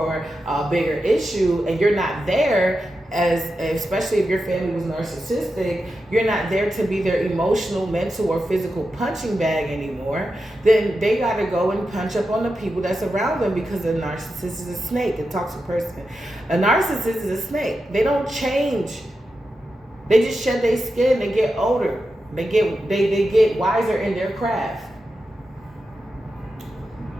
a bigger issue and you're not there, especially if your family was narcissistic, you're not there to be their emotional, mental, or physical punching bag anymore, then they got to go and punch up on the people that's around them, because a narcissist is a snake, a toxic person. A narcissist is a snake. They don't change. They just shed their skin. They get older. They get wiser in their craft.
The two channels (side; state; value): both; normal; correlation 0.89